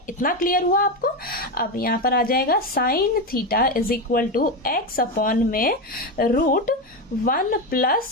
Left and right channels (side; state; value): both; normal; correlation 0.14